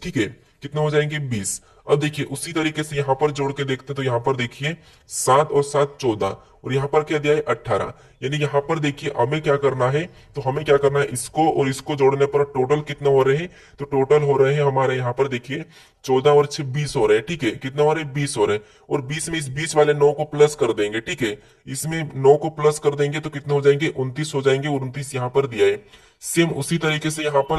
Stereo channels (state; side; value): identical; both; correlation 1.00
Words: ठीक है, कितने हो जाएंगे 20। अब देखिए उसी तरीके से यहाँ पर जोड़ के देखते हैं तो यहाँ पर देखिए 7 और 7 14, और यहाँ पर क्या दिया है 18, यानी यहाँ पर देखिए हमें क्या करना है, तो हमें क्या करना है, इसको और इसको जोड़ने पर टोटल कितने हो रहे हैं, तो टोटल हो रहे हैं हमारे यहाँ पर देखिए 14 और 6 20 हो रहे हैं, ठीक है, कितने हो रहे हैं 20 हो रहे हैं, और 20 में इस 20 वाले 9 को प्लस कर देंगे, ठीक है, इसमें 9 को प्लस कर देंगे तो कितने हो जाएंगे 29 हो जाएंगे, और 29 यहाँ पर दिया है। सेम उसी तरीके से यहाँ पर